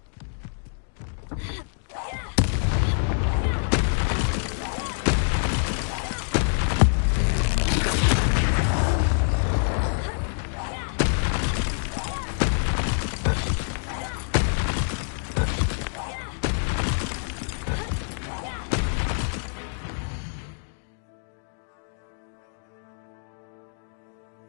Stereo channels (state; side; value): silent; right; digital silence